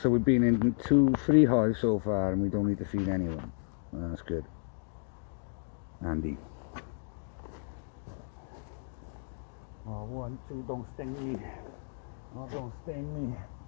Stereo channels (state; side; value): silent; right; digital silence